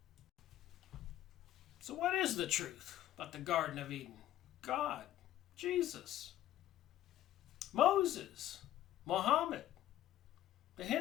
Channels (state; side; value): quieter; right; 13.2 dB